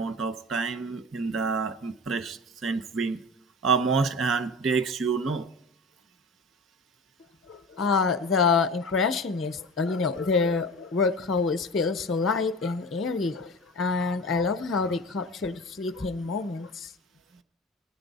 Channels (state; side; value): normal; both; correlation 0.34